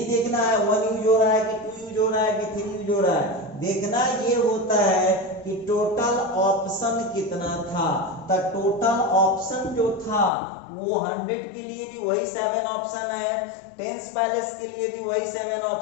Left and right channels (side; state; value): right; drops out; at 10.3 s